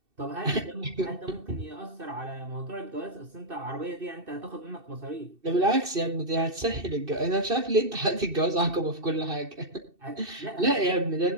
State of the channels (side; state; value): left; late; 2.6 ms